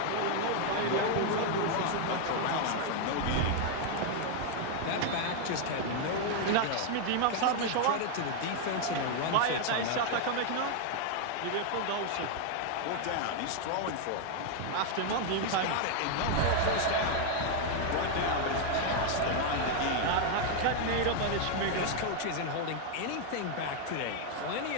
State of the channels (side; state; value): both; different; correlation 0.00